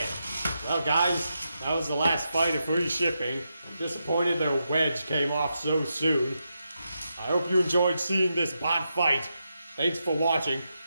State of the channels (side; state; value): both; inverted; correlation -0.86